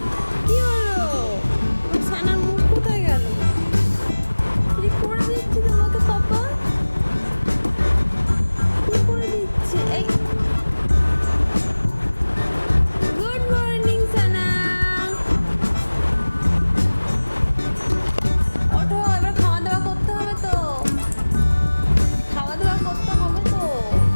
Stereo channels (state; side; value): inverted; both; correlation -1.00